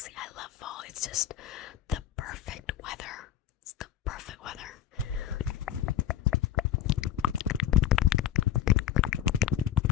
I love fall. It's just the perfect weather. It's the perfect weather.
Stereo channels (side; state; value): right; quieter; 10.6 dB